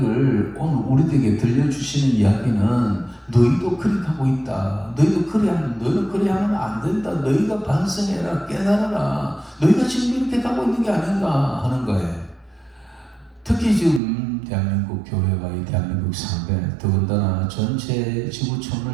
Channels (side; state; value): left; drops out; at 14.0 s